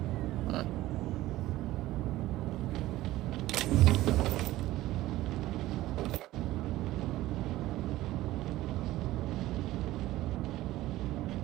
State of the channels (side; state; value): left; quieter; 16.3 dB